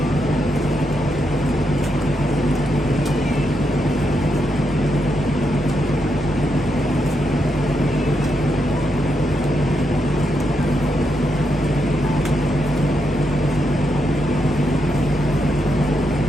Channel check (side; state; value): both; normal; correlation 0.82